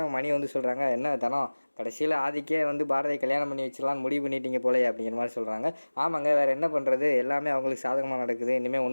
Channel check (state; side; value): inverted; both; correlation -1.00